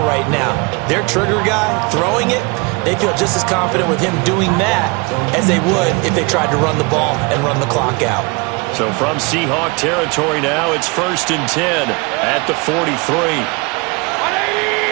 right now. Their trigger guy, throwing it, they feel just as confident with him doing that as they would if they tried to run the ball and run the clock out. So from Seahawk territory now, it's 1st and 10 at the 43.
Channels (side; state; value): left; quieter; 28.6 dB